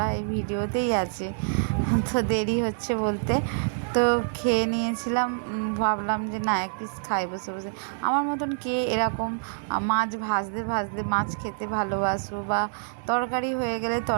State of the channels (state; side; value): silent; left; digital silence